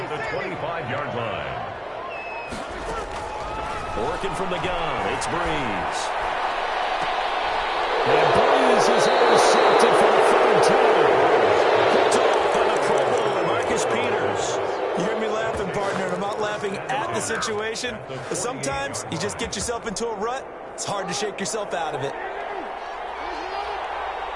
the 25-yard line. Working from the gun, it's Breeze. And Breeze is intercepted for the 3rd time. Picked off by the Pro Bowler, Marcus Peters. You hear me laughing, partner, and I'm not laughing at the situation, but sometimes you just get yourself into a rut. It's hard to shake yourself out of it.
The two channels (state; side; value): identical; both; correlation 1.00